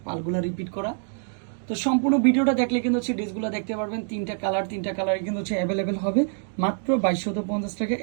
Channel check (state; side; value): silent; left; 61 dB below the other